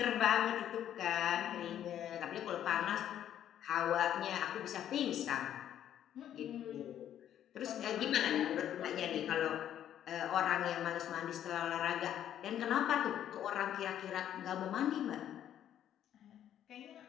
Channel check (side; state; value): right; quieter; 10.7 dB